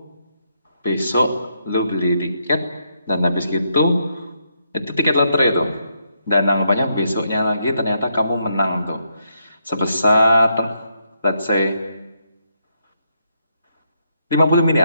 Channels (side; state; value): both; inverted; correlation -0.78